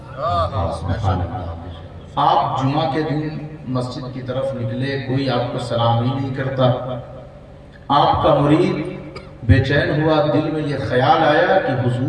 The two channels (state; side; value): identical; both; correlation 1.00